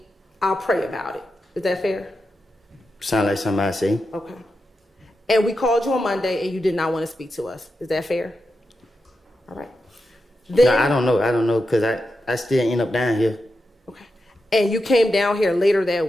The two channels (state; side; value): normal; both; correlation 0.88